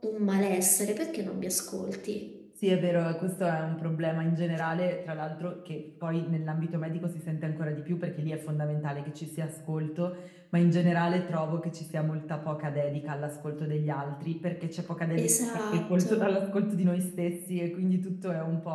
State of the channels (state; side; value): identical; both; correlation 1.00